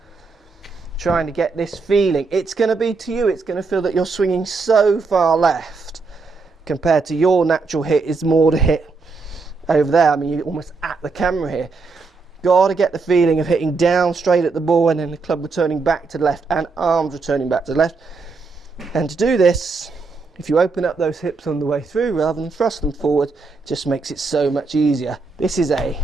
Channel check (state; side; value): quieter; left; 4.3 dB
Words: trying to get this feeling. It's going to be to you, it's going to feel that you're swinging so far left compared to your natural hit is more to hit over there. I mean, you're almost at the camera here. Got to get the feeling of hitting down straight at the ball and then the club returning back to the left and arms returning back to the left. And to do this, if you open up those hips on the way through rather than thrust them forward, it just makes it so much easier. This is a